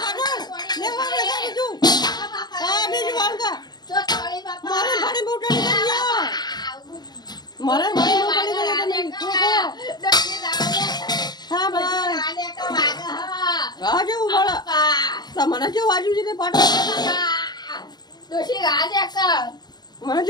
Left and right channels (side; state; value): right; late; 0.20 ms